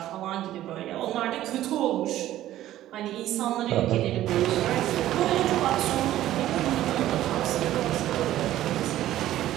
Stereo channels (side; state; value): left; quieter; 13.7 dB